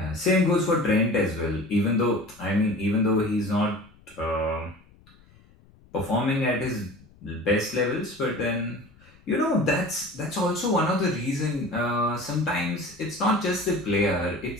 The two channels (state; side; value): noise; left; rumble, 27 dB below the sound